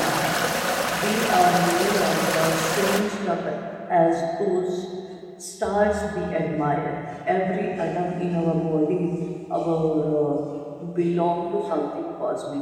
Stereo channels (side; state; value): both; identical; correlation 1.00